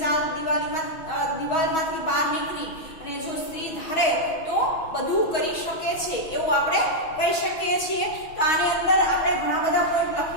ચાર દિવાલમાંથી બહાર નીકળી અને જો સ્ત્રી ધારે તો બધું કરી શકે છે એવું આપણે કહી શકીએ છીએ. તો આની અંદર આપણે ઘણા બધા પોઈન્ટ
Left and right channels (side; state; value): right; late; 6.3 ms